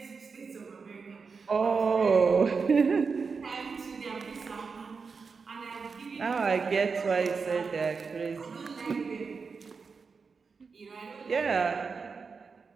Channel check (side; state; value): left; quieter; 5.1 dB